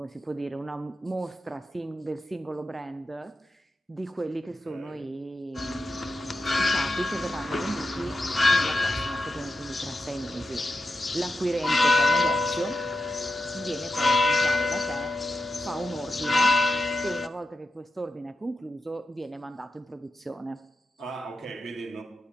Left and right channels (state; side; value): normal; both; correlation 0.88